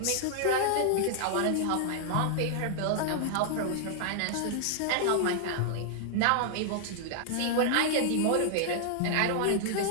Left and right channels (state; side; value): different; both; correlation -0.01